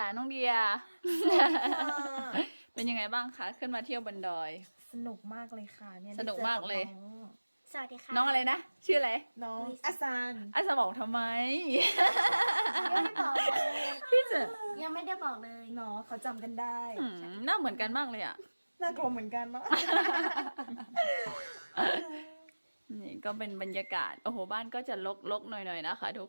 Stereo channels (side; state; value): both; inverted; correlation -1.00